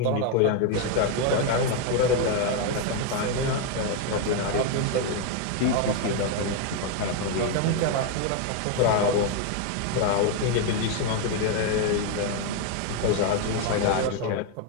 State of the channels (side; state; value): both; different; correlation 0.01